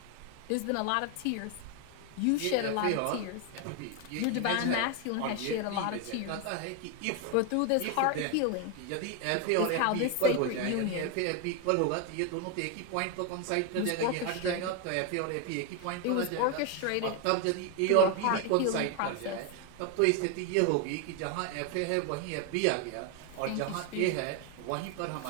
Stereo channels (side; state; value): both; different; correlation 0.01